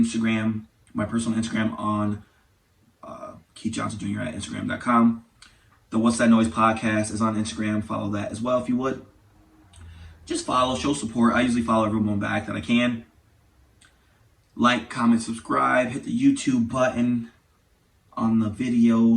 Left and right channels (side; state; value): both; identical; correlation 1.00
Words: my personal Instagram on Keith Johnson Jr. at Instagram.com. The What's That Noise podcast is on Instagram. Follow that as well if you would. Just follow, show support. I usually follow everyone back that I can. Like, comment, subscribe. Hit the YouTube button on the